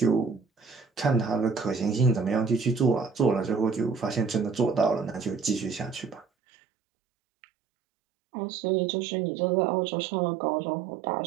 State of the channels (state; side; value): drops out; left; at 6.2 s